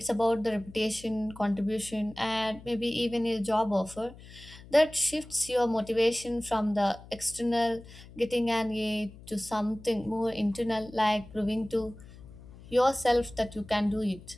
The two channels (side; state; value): left; noise; hum, 19 dB below the sound